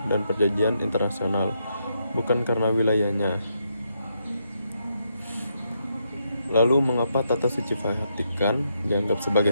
dan perjanjian internasional, bukan karena wilayahnya. Lalu mengapa tata suci Vatikan dianggap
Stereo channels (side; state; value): both; inverted; correlation -0.79